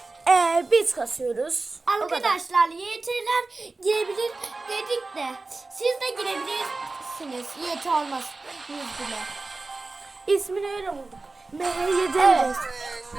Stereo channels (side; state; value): left; quieter; 3.5 dB